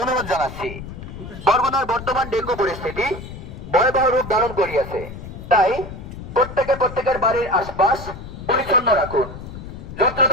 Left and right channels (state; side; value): noise; left; rumble, 11 dB below the sound